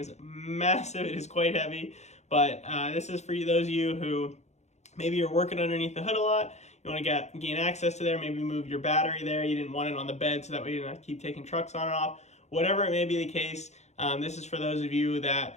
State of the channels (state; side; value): late; right; 0.33 ms